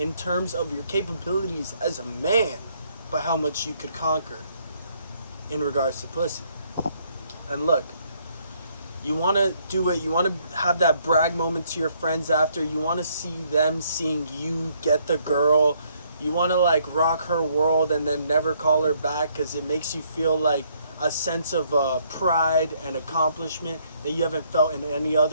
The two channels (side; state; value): both; inverted; correlation -0.69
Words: terms of your capabilities as a man by how much you could conquer in regards to pussy. And look, you want to do it, you want to have that brag moment to your friends after, you want to see them seeing you get the girl, you want to rock her world and then never call her back because it makes you feel like a sense of pride and accomplishment that you haven't felt in any